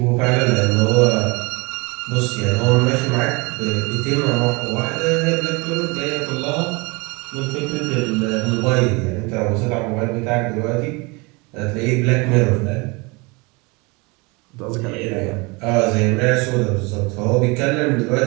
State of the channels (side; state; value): left; quieter; 27.2 dB